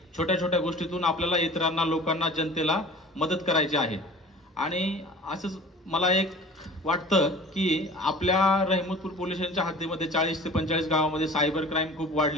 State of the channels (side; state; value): both; normal; correlation 0.42